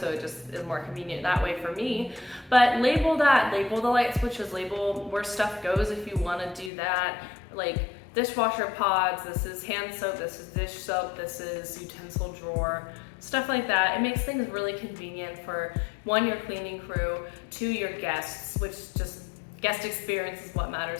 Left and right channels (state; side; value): drops out; right; at 6.7 s